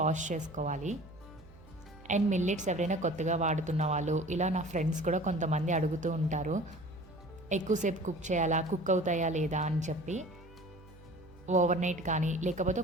చేసుకోవాలి. అండ్ మిల్లెట్స్ ఎవరైనా కొత్తగా వాడుతున్న వాళ్ళు, ఇలా నా ఫ్రెండ్స్ కూడా కొంతమంది అడుగుతూ ఉంటారు, ఎక్కువసేపు కుక్ చేయాలా, కుక్ అవుతాయా లేదా అని చెప్పి. ఓవర్ నైట్ కానీ లేకపోతే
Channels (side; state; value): right; noise; hum, 22 dB below the sound